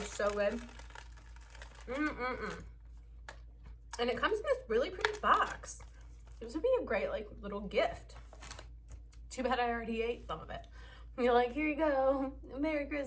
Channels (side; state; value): both; identical; correlation 1.00